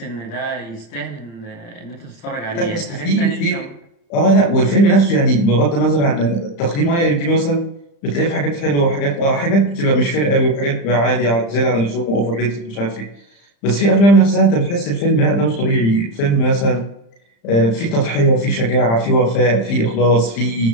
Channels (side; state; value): right; late; 35 ms